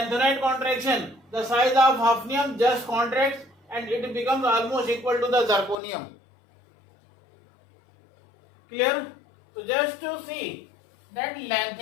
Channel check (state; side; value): drops out; right; at 5.8 s